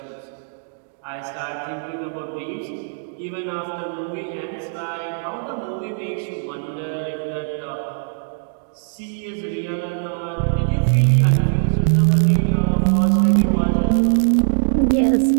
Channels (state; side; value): silent; left; digital silence